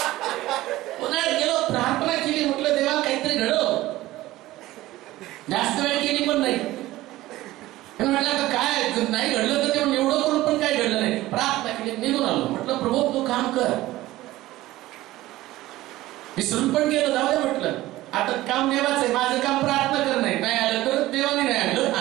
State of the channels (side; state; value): left; quieter; 16.9 dB